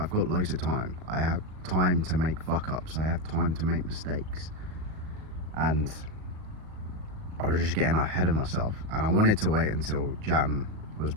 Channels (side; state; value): left; late; 38 ms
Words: got loads of time. I have time to make fuck ups. I have time to make mistakes, and I was just getting ahead of myself, and I wanted to wait until Jan was